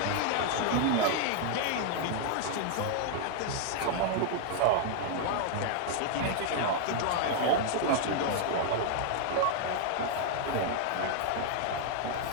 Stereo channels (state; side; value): different; both; correlation 0.00